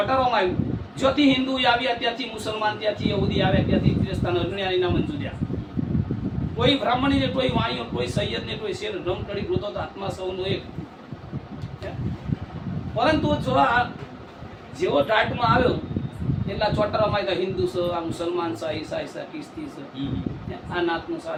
આવ્યું. જ્યોથી હિન્દુ આવ્યા ત્યાંથી મુસલમાન, ત્યાંથી યહૂદી આવ્યા ત્યાંથી ક્રિસ્તાન, અજ્ઞાનીના મંજૂર્યા. કોઈ બ્રાહ્મણી ને, કોઈ વાણીઓ, કોઈ સૈયદ ને, કોઈ શેર રમકડી ગોતો તો આત્મા સૌનો એક. પરંતુ જો આ જેવો ટાટમાં આવ્યો એટલા ચોટરામાં આવ્યા હિન્દુ છે, આ મુસલમાન છે, ઈસાઈ છે, ખ્રિસ્તી છે, આ નાતનું છે,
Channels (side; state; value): both; identical; correlation 1.00